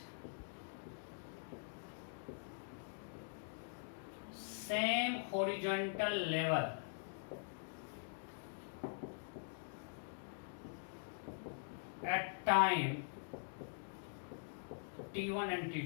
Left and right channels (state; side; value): silent; right; digital silence